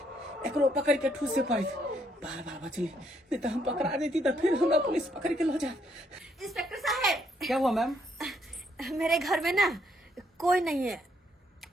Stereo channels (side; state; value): both; normal; correlation 0.72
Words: एकरो पकड़ के ठूसे पड़ी। बाल बाल बचली, नहीं तो हम पकड़ा देती तो फिर हमरा पुलिस पकड़ के लो जात। इंस्पेक्टर साहब क्या हुआ मैम? मेरे घर में ना कोई नहीं है।